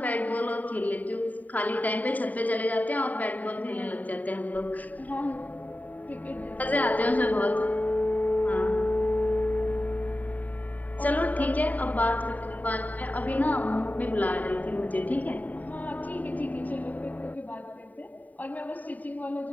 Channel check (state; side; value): late; right; 0.076 ms